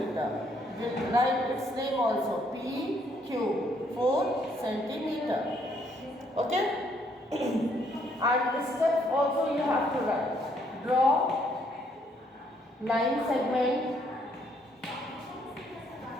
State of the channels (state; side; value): normal; both; correlation 0.69